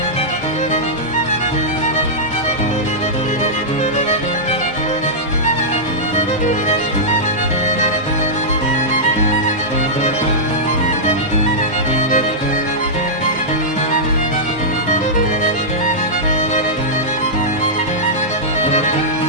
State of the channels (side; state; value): both; normal; correlation -0.12